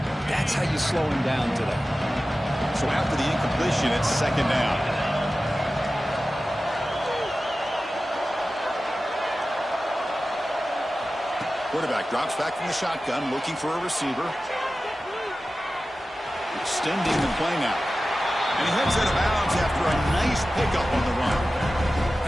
that's how you slow him down today. So after the incompletion, it's second down. Quarterback drops back from the shotgun, looking for a receiver. Extending the play now. And he heads out of bounds after a nice pickup on the run.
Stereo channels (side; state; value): both; normal; correlation 0.95